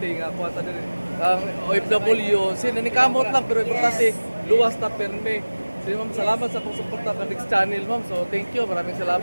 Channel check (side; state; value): both; inverted; correlation -1.00